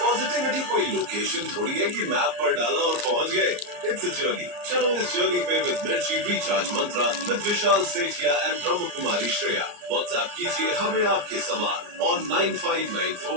कोई लोकेशन थोड़ी है कि मैप पर डाला और पहुंच गए। It's a journey. चलो इस जर्नी पे विद मिर्ची recharge Mantra with Vishal Sethia and Brahma Kumari Shreya. WhatsApp कीजिए हमें आपके सवाल ऑन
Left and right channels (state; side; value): late; left; 34 ms